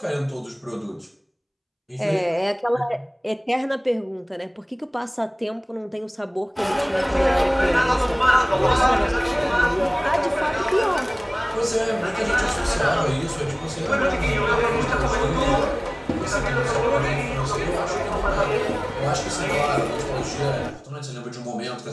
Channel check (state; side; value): identical; both; correlation 1.00